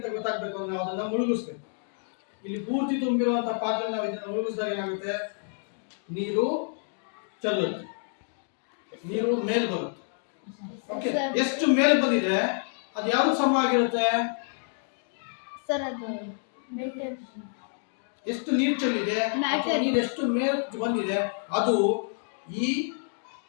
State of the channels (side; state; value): right; silent; 59 dB below the other